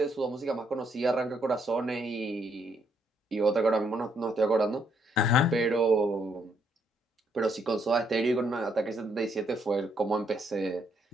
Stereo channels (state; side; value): normal; both; correlation 0.73